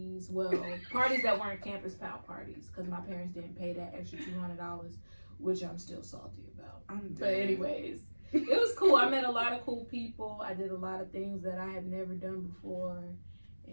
Well, parties that weren't campus pal parties because my parents didn't pay that extra $200, which I'm still salty about. But anyways, it was cool. I met a lot of cool people. I did a lot of things that I had never done before,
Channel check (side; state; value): both; inverted; correlation -1.00